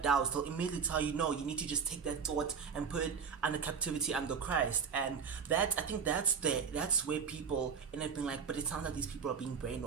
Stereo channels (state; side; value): quieter; left; 6.3 dB